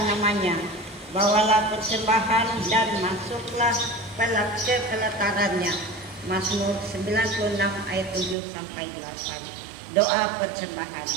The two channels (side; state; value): left; drops out; at 8.3 s